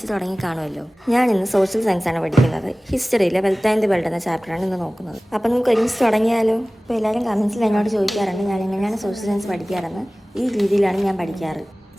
തുടങ്ങി കാണുമല്ലോ. ഞാൻ ഇന്ന് സോഷ്യൽ സയൻസാണ് പഠിക്കുന്നത്. ഹിസ്റ്ററിയിലെ വെൽത്ത് ആൻഡ് ദി വേൾഡ് എന്ന ചാപ്റ്ററാണ് ഇന്ന് നോക്കുന്നത്. അപ്പം നമുക്ക് ഒരുമിച്ച് തുടങ്ങിയാലോ? അപ്പോൾ എല്ലാവരും കമൻസിൽ എന്നോട് ചോദിക്കാറുണ്ട് ഞാൻ എങ്ങനെയാണ് സോഷ്യൽ സയൻസ് പഠിക്കാറെന്ന്. ഈ രീതിയിലാണ് ഞാൻ പഠിക്കാറ്.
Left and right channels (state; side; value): normal; both; correlation 0.98